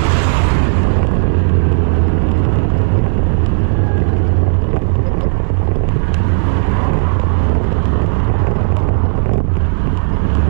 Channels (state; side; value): silent; left; digital silence